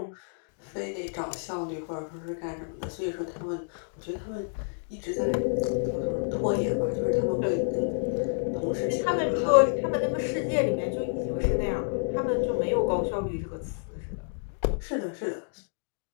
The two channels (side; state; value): right; silent; digital silence